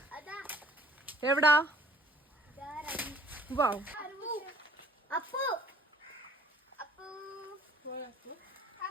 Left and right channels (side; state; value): both; normal; correlation 0.55